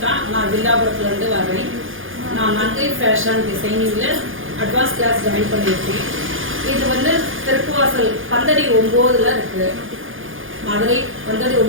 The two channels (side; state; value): left; late; 0.58 ms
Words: நான் வில்லாபுரத்துலேருந்து வரேன். நான் நங்கை ஃபேஷன் டிசைனிங்கில் அட்வான்ஸ் கிளாஸ் ஜாயின் பண்ணியிருக்கேன். இது வந்து திருப்புவாசல் பந்தடி 9ல் இருக்குது. மதுரை பந்தடி